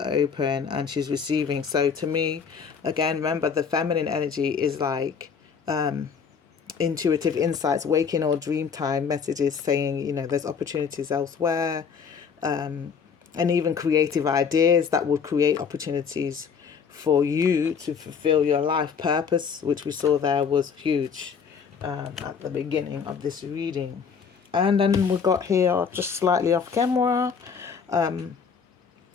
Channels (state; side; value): quieter; right; 6.4 dB